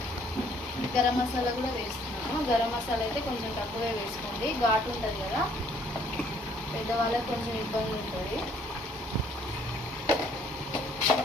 గరం మసాలా కూడా వేస్తున్నాను. గరం మసాలా అయితే కొంచెం తక్కువగా వేసుకోండి, ఘాటు ఉంటుంది కదా, పెద్దవాళ్ళకి కొంచెం ఇబ్బంది ఉంటుంది.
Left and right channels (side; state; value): both; normal; correlation 0.63